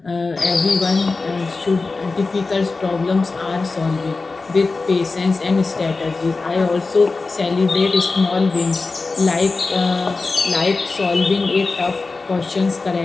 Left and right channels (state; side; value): quieter; right; 3.8 dB